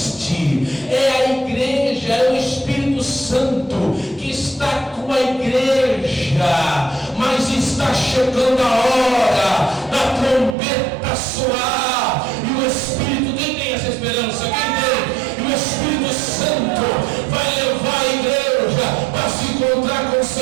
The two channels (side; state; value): left; drops out; at 10.6 s